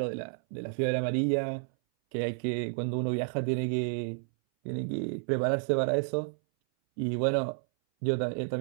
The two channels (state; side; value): silent; left; 57 dB below the other